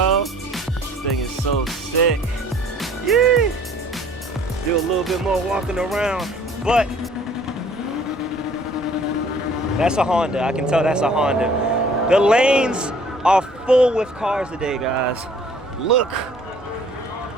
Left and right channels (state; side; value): normal; both; correlation 0.55